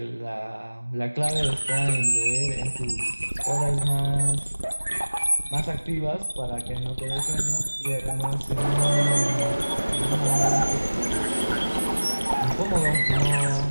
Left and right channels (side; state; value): both; inverted; correlation -1.00